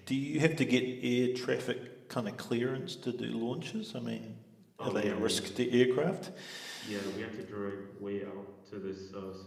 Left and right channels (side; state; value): both; identical; correlation 1.00